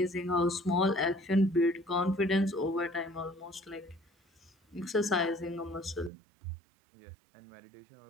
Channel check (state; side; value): drops out; left; at 6.1 s